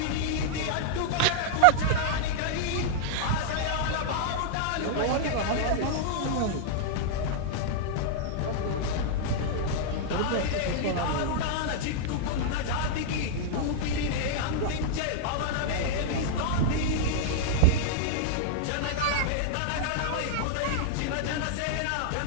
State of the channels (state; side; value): different; both; correlation -0.01